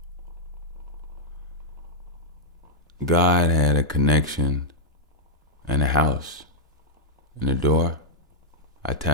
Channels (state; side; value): normal; both; correlation -0.05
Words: God had a connection and a house and a door. I